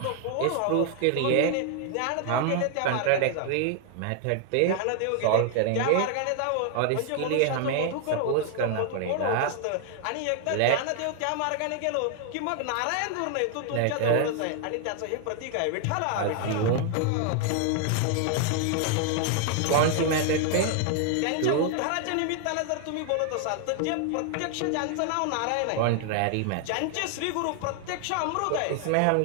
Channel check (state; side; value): different; both; correlation 0.00